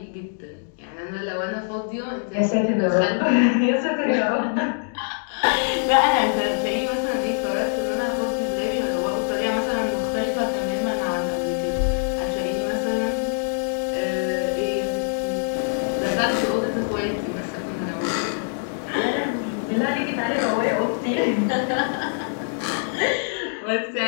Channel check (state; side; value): silent; right; digital silence